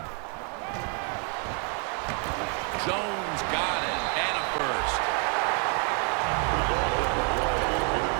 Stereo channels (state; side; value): quieter; left; 39.8 dB